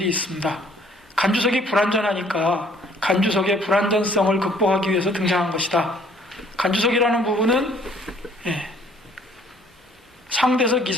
있습니다. 간주석이 불완전하니까 간주석의 불완전성을 극복하기 위해서 등장한 것이다. 간주석이라는 부분은 상대석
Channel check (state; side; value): normal; both; correlation 0.59